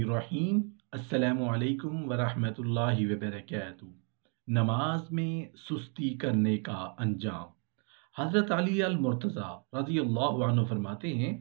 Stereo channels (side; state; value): left; quieter; 40.0 dB